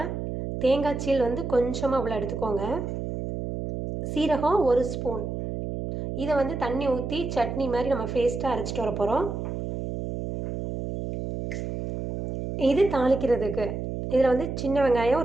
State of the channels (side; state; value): right; noise; hum, 5 dB below the sound